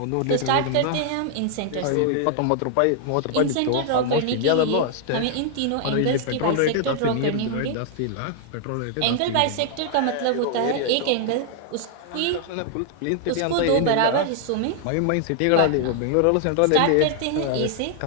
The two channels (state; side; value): different; both; correlation 0.00